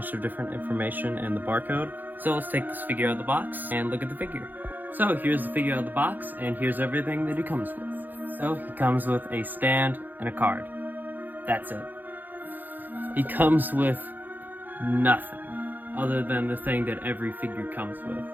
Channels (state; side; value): late; left; 0.086 ms